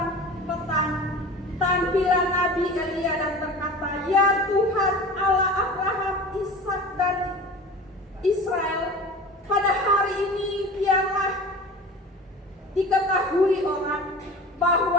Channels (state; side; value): normal; both; correlation 0.36